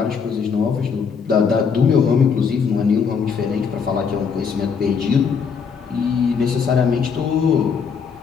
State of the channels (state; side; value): quieter; right; 6.1 dB